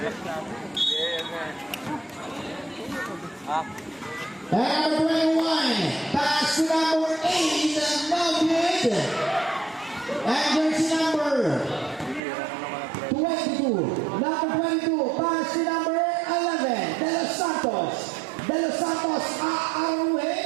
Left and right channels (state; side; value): drops out; left; at 12.2 s